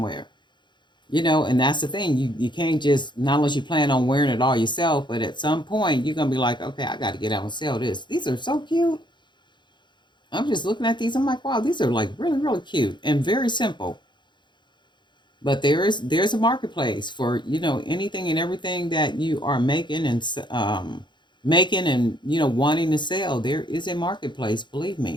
And that's the thing. You can't just, not unless you plan on wearing it all yourself, but at some point you're gonna be like, okay, I got to get out and sell this. These are so cute. I'm just looking at these. I'm like, wow, these are like really, really cute and very simple. But there's a marketplace for anything and everything that you are making and wanting to sell. There is a marketplace, believe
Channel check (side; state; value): right; late; 0.22 ms